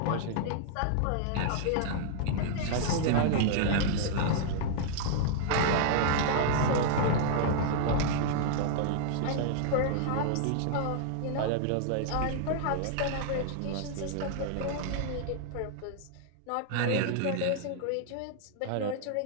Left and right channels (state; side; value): different; both; correlation -0.01